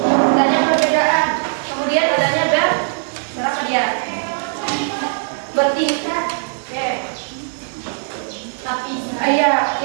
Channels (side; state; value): left; silent; digital silence